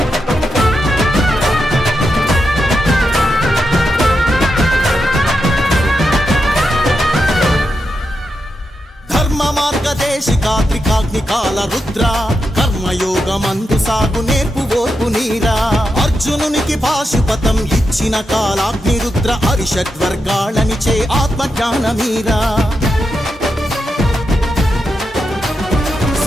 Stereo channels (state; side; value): normal; both; correlation 0.86